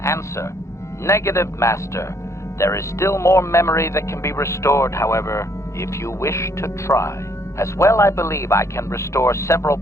Answer. Negative, Master. There is still more memory that can be restored, however, if you wish to try. As well, I believe I can restore several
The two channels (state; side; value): late; right; 0.14 ms